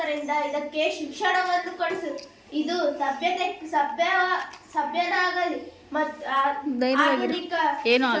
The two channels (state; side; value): identical; both; correlation 1.00